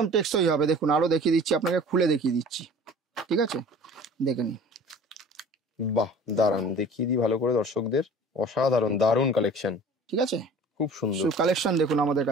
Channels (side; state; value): both; normal; correlation 0.45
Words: টেকসই হবে। দেখুন আরো দেখিয়ে দিচ্ছি আপনাকে, খুলে দেখিয়ে দিচ্ছি। ঠিক আছে, দেখে নিন। বাহ দারুন, দেখিয়ে দিই ভালো করে দর্শকদের। অসাধারণ, দারুন কালেকশন, ঠিক আছে, খুব সুন্দর। কালেকশন দেখুন আমাদের